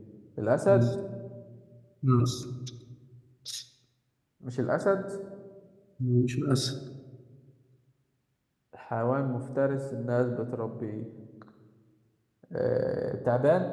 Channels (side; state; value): both; identical; correlation 1.00